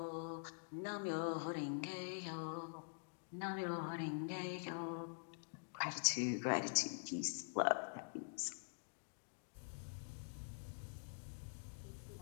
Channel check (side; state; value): right; silent; digital silence